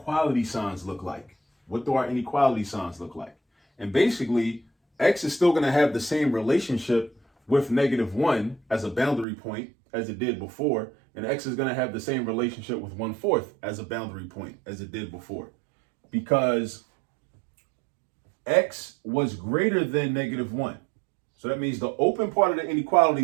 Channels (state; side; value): drops out; left; at 9.2 s